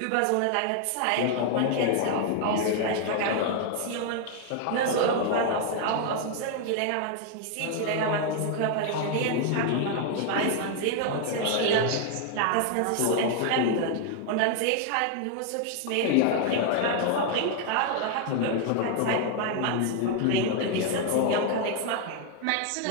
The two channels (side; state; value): both; different; correlation 0.00